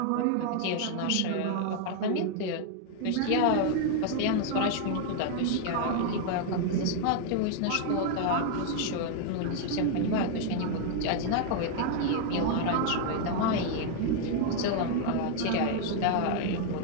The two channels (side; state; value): both; different; correlation 0.00